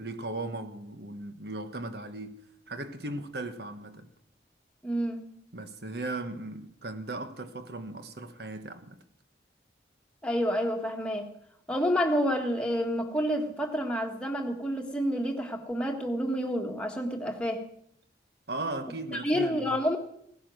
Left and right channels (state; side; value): normal; both; correlation 0.69